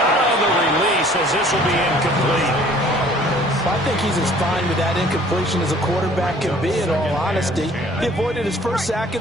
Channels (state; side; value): normal; both; correlation 0.54